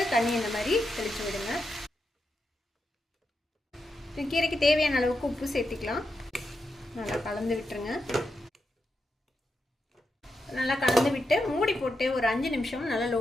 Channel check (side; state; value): both; normal; correlation 0.86